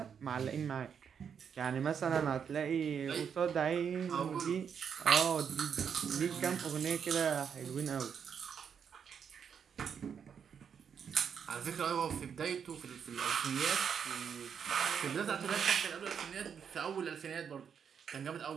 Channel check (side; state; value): left; quieter; 7.3 dB